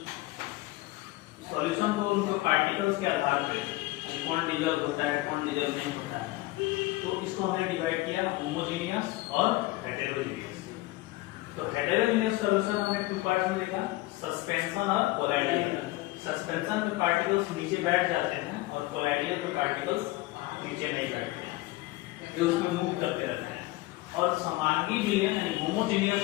को उनके पार्टिकल्स के आधार पे कौन डिजॉल्व होता है कौन डिजॉल्व नहीं होता है, तो इसको हमने डिवाइड किया होमोजेनियस और हेटेरोजेनियस। तो हेटेरोजेनियस सॉल्यूशन हमने टू पार्ट्स में देखा, सस्पेंशन और कोलाइडियल। सस्पेंशन में पार्टिकल्स नीचे बैठ जाते हैं और कोलाइडियल में पार्टिकल्स नीचे नहीं बैठते हैं, जो उसमें मूव करते रहते हैं। और समांगी विलयन यानी होमोजेनियस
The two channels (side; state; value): right; quieter; 19.2 dB